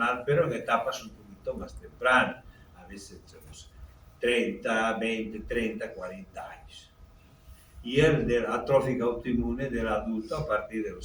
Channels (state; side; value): identical; both; correlation 1.00